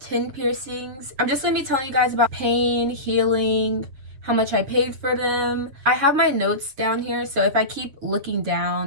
piercings. I'm just going to be telling you guys about pain, healing, how much I paid for them. I have my notes down here, so if I keep looking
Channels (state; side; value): late; left; 7.6 ms